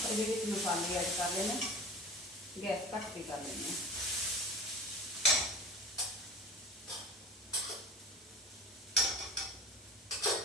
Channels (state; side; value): normal; both; correlation 0.36